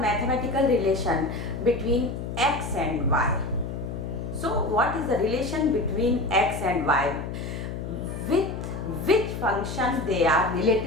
relation between x and y. So what is the relation between x and y? With which function they are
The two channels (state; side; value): noise; left; hum, 6 dB below the sound